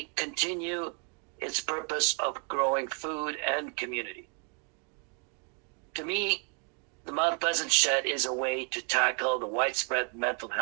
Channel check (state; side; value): quieter; left; 37.9 dB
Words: continue its purpose of growing food and community. To me, the Mount Pleasant Shed is a way to tackle the widespread mental